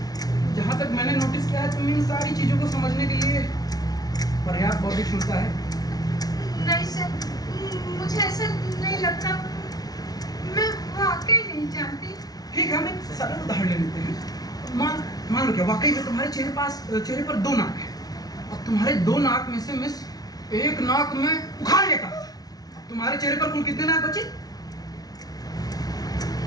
जहाँ तक मैंने नोटिस किया है, तुम इन सारी चीज़ों को समझने के लिए पर्याप्त बौद्धिक क्षमता है। नहीं सर, मुझे ऐसा नहीं लगता, मैं वाकई नहीं जानती। ठीक है, हम एक सरल उदाहरण ले लेते हैं। मान लो क्या वाकई में तुम्हारे चेहरे पर 2 नाक है। अब तुम्हारे 2 नाक में से मिस एक नाक में उखाड़ लेता, तुम्हारे चेहरे पर कुल कितने नाक बचे?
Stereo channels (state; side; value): late; right; 0.19 ms